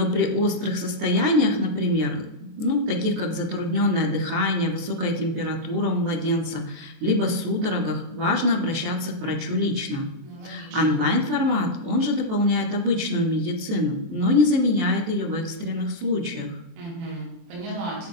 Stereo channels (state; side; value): late; left; 23 ms